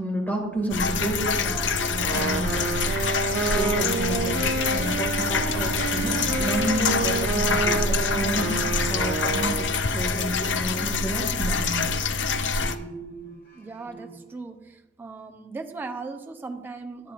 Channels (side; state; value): both; normal; correlation 0.34